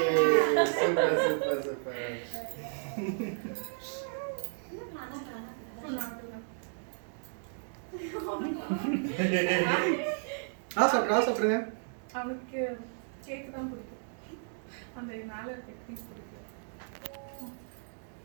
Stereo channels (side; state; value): left; silent; digital silence